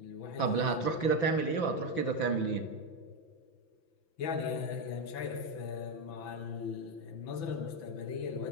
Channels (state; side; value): late; right; 5.9 ms